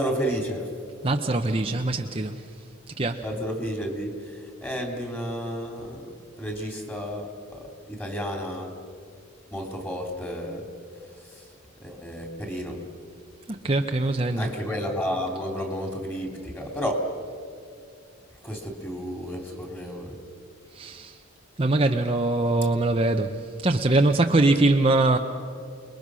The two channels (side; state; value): both; normal; correlation 0.63